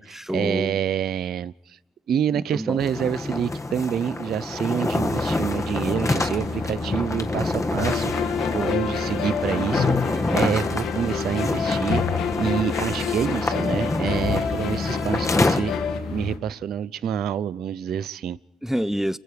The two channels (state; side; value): normal; both; correlation 0.72